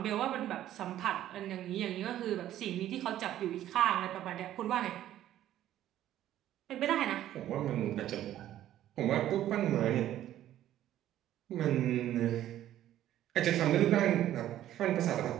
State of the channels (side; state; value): left; quieter; 12.5 dB